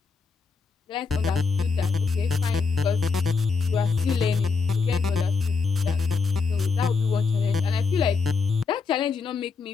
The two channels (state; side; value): quieter; right; 4.8 dB